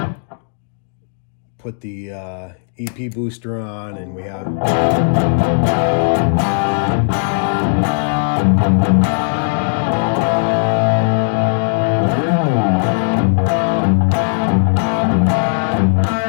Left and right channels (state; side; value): silent; right; digital silence